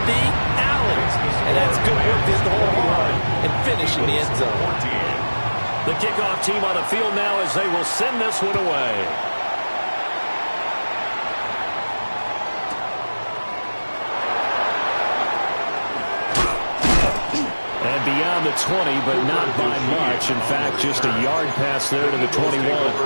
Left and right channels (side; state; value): both; inverted; correlation -1.00